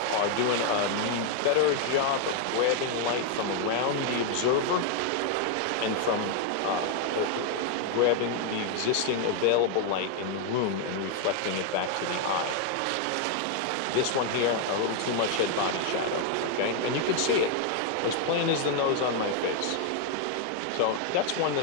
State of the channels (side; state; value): both; different; correlation 0.00